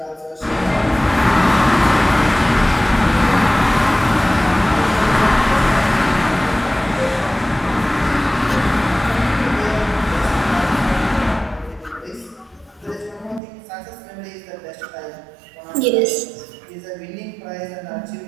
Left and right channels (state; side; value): drops out; left; at 13.4 s